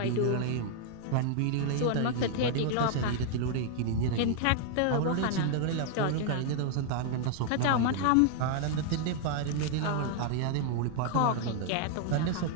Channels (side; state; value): both; different; correlation 0.00